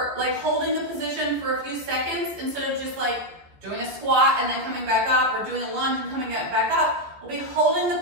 like holding the position for a few seconds instead of just like doing a squat and then coming back up, or doing a lunge and coming back up. We'll be holding the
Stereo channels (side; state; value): left; late; 15 ms